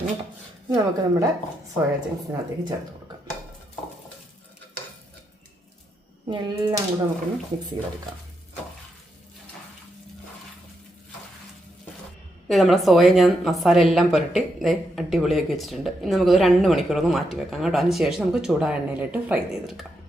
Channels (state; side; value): normal; both; correlation 0.81